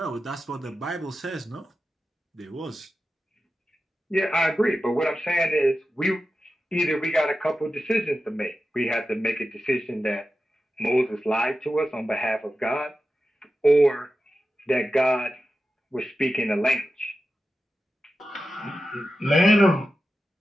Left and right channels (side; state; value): both; normal; correlation 0.92